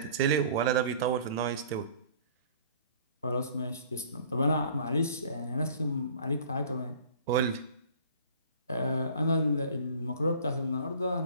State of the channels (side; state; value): both; inverted; correlation -0.48